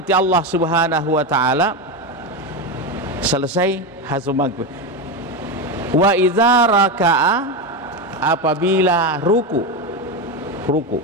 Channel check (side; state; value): both; normal; correlation 0.14